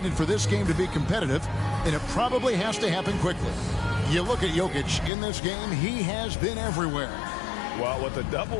for this game to be competitive, and it probably has to happen quickly. You look at Jokic in this game, he has been everywhere. Well, with a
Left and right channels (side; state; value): right; drops out; at 5.1 s